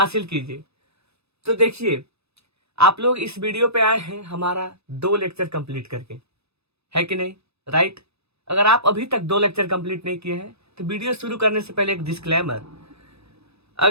कीजिए। तो देखिए, आप लोग इस वीडियो पे आए हैं हमारा 2 लेक्चर कंप्लीट करके, है कि नहीं? राइट। अगर आप अभी तक 2 लेक्चर कंप्लीट नहीं किए हैं तो वीडियो शुरू करने से पहले एक डिस्क्लेमर।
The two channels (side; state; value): left; late; 0.79 ms